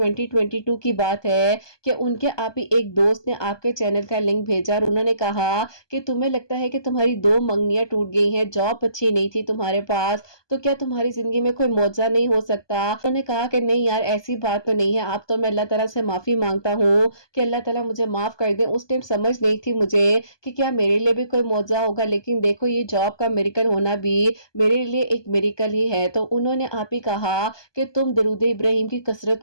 کی بات ہے کہ ان کے آپ ہی ایک دوست نے آپ کے چینل کا لنک بھیجا، اور انہوں نے کہا کہ تمہیں لگتا ہے کہ تمہاری 2 منگنیاں ٹوٹ گئی ہیں، جاب اچھی نہیں تھی تمہارے پاس، تو کیا تمہاری زندگی میں کوئی معجزہ نہیں ہو سکتا؟ انہوں نے کہا کہ نہیں یار ایسی بات تو نہیں ہے، اب تو میں اللہ تعالیٰ سے معافی مانگتا ہوں کہ اللہ تعالیٰ مجھے معاف کر دیں، اس ٹائم سمجھ نہیں تھی مجھے کہ کیا میرے لیے بھی کوئی معجزہ ہوگا، لیکن دیکھو یہ جاب کا میریکل ہونا بھی میرے لیے ایک میریکل ہی ہے۔ تو انہوں نے آپ ہی کہا کہ تم درود ابراہیم کی کثرت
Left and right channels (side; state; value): right; late; 1.2 ms